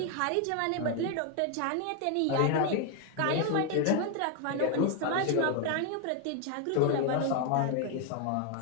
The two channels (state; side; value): different; both; correlation 0.00